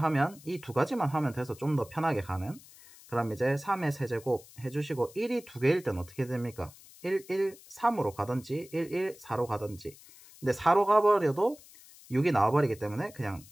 이 두 가지만 하면 돼서 좀 더 편하게 가는. 그럼 이제 3의 세제곱 해주시고 1이 2개일 때는 어떻게 됩니까? 1, 1, 3으로 가든지 1, 1, 4로 가든지. 근데 4로 가버려도 6이 나와버리기 때문에 그냥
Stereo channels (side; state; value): left; noise; hiss, 22 dB below the sound